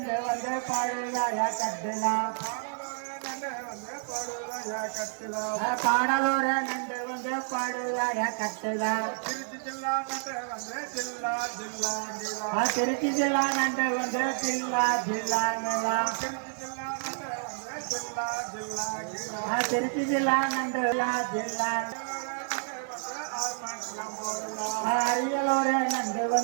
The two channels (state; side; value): silent; left; 57 dB below the other